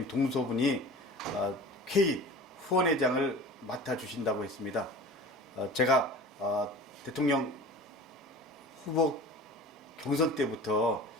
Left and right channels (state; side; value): normal; both; correlation 0.39